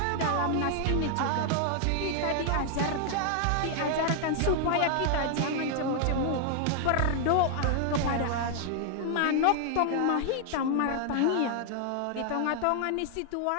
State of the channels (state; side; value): different; both; correlation 0.00